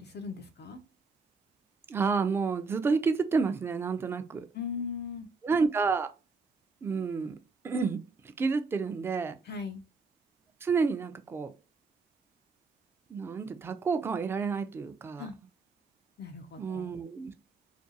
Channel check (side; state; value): left; quieter; 4.1 dB